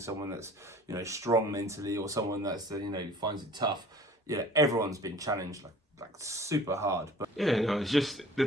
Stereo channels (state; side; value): normal; both; correlation 0.48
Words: that's, you know, strong mentally or someone that's you know, finds it tough. Yeah, everyone's been challenged like super hard. But yeah, no, it's just the